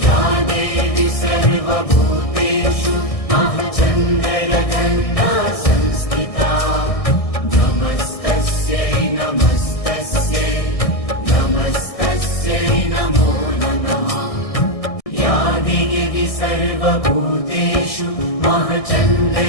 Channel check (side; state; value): right; late; 1.6 ms